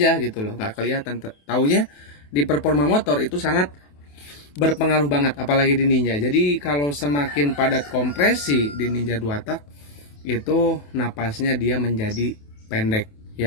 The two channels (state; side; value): late; right; 28 ms